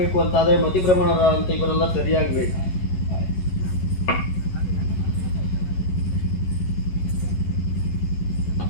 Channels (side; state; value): right; late; 11 ms